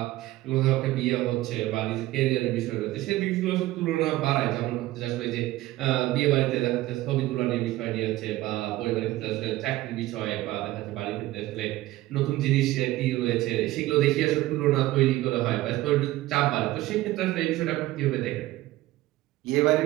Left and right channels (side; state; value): left; quieter; 16.9 dB